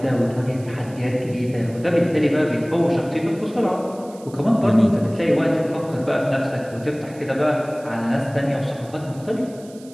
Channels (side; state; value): right; noise; hiss, 24 dB below the sound